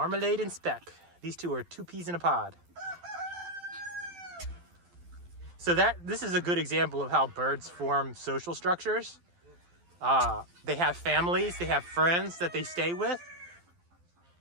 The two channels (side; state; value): left; late; 12 ms